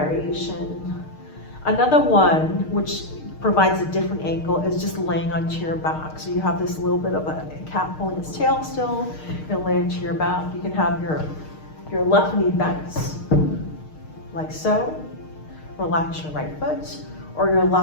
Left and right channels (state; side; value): late; right; 6.5 ms